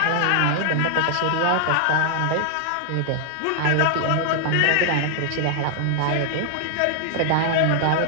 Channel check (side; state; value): both; different; correlation 0.00